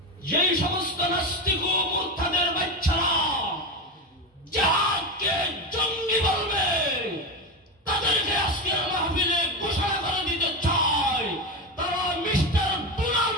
যেই সমস্ত নাস্তিক ও মুরতাদের বাচ্চারা জিহাদকে জঙ্গি বলবে তাদেরকে আজকের মাহফিলে ঘোষণা করে দিতে চাই তারা মিস্টার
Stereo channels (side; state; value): both; normal; correlation 0.18